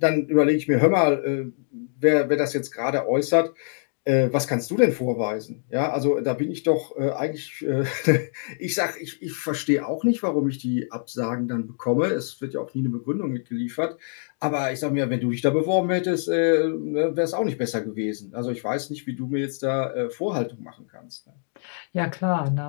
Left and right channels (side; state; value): right; silent; digital silence